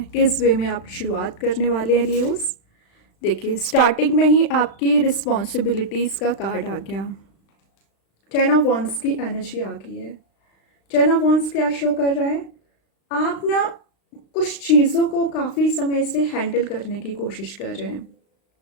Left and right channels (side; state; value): right; late; 36 ms